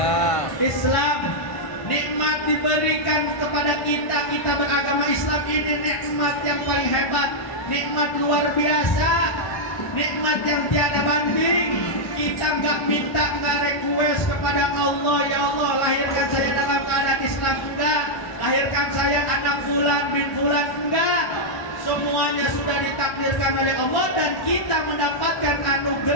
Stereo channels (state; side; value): late; right; 1.1 ms